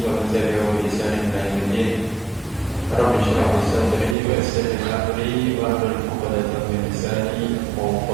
man tabi'ahum bi ihsanin ila yaumil din. Rabbi shrah li sadri wa yassir li amri wahlul 'uqdatam min lisani yafqahu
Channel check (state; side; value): drops out; left; at 4.2 s